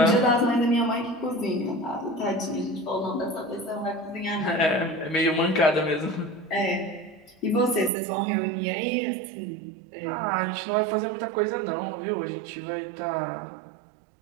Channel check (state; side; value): drops out; left; at 7.9 s